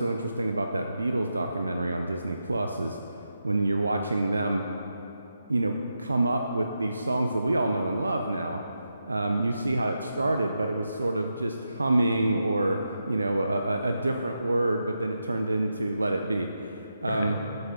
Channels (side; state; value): both; inverted; correlation -0.86